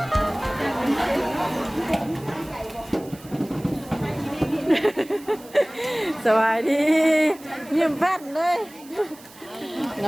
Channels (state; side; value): noise; right; hiss, 22 dB below the sound